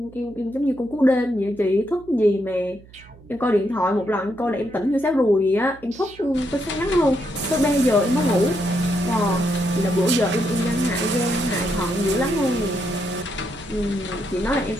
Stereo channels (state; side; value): noise; right; hum, 23 dB below the sound